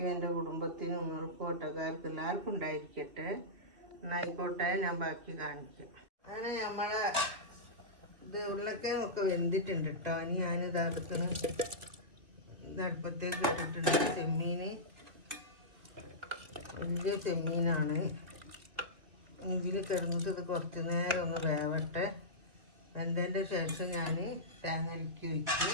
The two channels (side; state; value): left; late; 2.3 ms